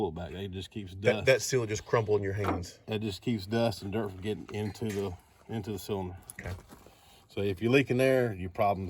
back. It just keeps dust. That seal just crumbled in your hands. It just keeps dust and dirt from getting into the cylinder. Okay. So if you're leaking there, your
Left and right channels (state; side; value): identical; both; correlation 1.00